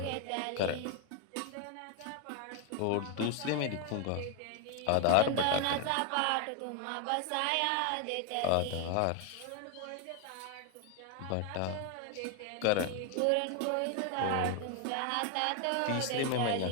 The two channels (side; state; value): both; different; correlation 0.01